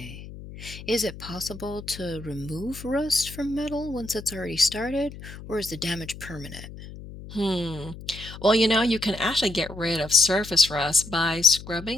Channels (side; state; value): left; noise; hum, 14 dB below the sound